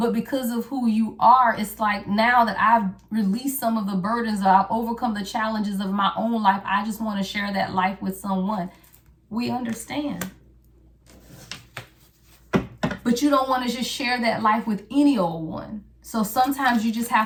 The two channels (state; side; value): identical; both; correlation 1.00